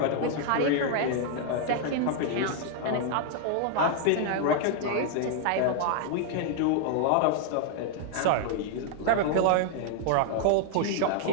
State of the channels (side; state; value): both; different; correlation 0.00